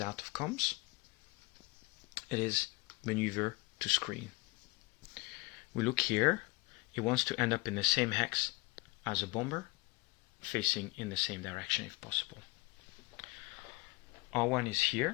out of comms. It is maneuver to screen. We look here, it wants to end up in the same hex as a bomber, facing in the same direction if possible. R1 is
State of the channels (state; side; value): quieter; right; 25.6 dB